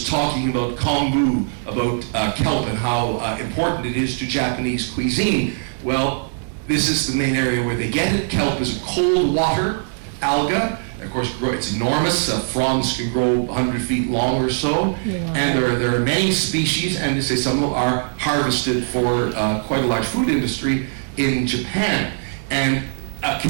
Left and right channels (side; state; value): left; silent; digital silence